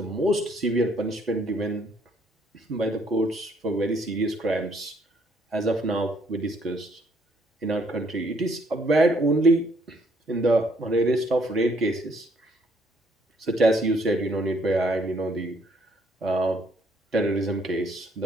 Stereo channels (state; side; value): normal; both; correlation 0.67